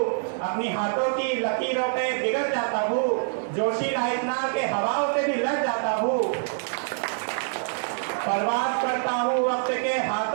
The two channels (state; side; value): silent; left; digital silence